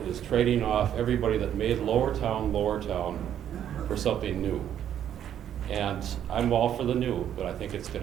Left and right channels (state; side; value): quieter; left; 10.1 dB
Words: is trading off everybody that made Lowertown for something new. And I'm all for the new, but I think it's